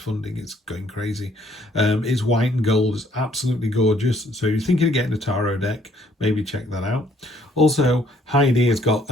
it's going crazy. It's white and gold, it's absolutely gorgeous. So if you're thinking of getting a tarot deck, maybe check that out. Also, Heidi has got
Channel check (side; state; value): both; normal; correlation 0.64